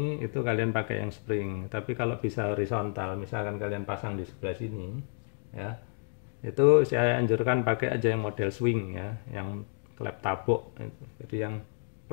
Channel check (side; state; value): right; silent; 57 dB below the other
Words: itu kalian pakai yang spring. Tapi kalau bisa horizontal, misalkan kalian pasang di sebelah sini ya, itu saya anjurkan pakai aja yang model swing ya, yang klep tabuk itu. Jadi yang